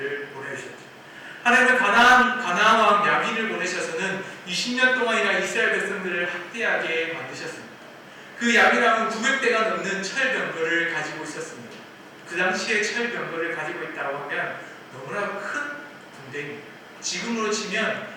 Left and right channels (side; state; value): both; identical; correlation 1.00